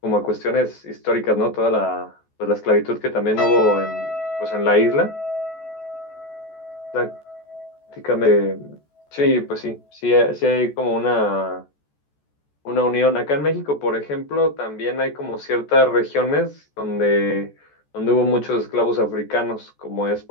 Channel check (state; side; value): late; right; 14 ms